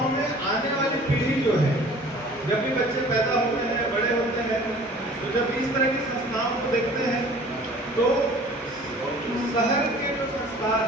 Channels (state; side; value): normal; both; correlation 0.48